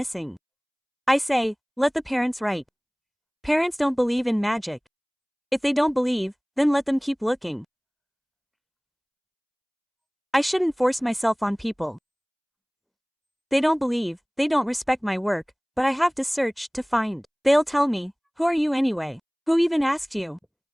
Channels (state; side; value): identical; both; correlation 1.00